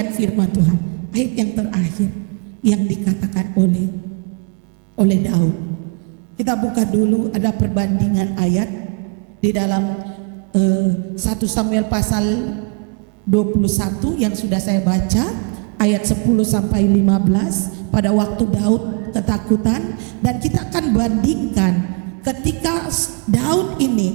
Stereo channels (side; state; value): left; quieter; 34.9 dB